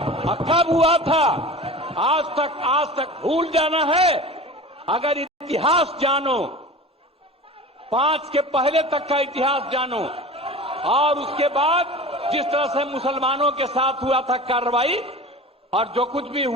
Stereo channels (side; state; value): both; normal; correlation 0.35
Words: कब हुआ था? आज तक भूल जाना है। अगर इतिहास जानो, 5 के पहले तक का इतिहास जानो, और उसके बाद जिस तरह से मुसलमानों के साथ हुआ था कार्रवाई, और जो कुछ भी